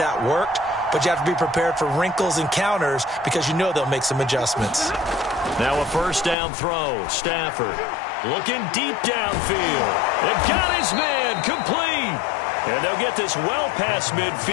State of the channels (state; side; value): drops out; right; at 6.4 s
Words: worked, but you have to be prepared for wrinkles and counters because you know they'll make some adjustments. Now a first down throw. Stafford looking deep downfield. And got his man complete. And they'll get this well past